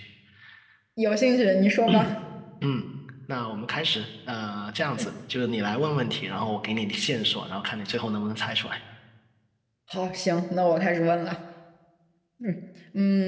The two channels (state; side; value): identical; both; correlation 1.00